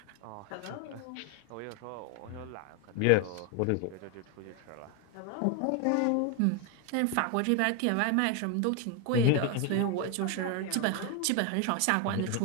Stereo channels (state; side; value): different; both; correlation 0.01